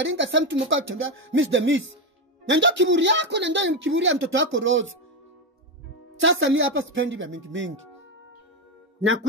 sasa mtu mkao tembea miss the miss. Na ndio kiburi yako na ndio kiburi ya mtoto wako Rose. Sasa mimi hapa sipendi vya mingi.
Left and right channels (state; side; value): normal; both; correlation 0.11